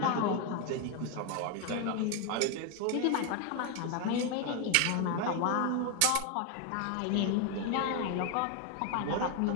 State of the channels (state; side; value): different; both; correlation 0.01